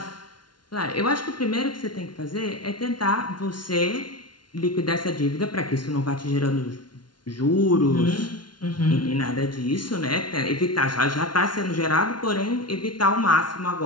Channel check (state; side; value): late; right; 0.71 ms